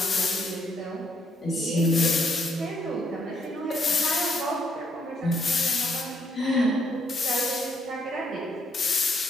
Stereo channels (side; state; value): both; normal; correlation 0.72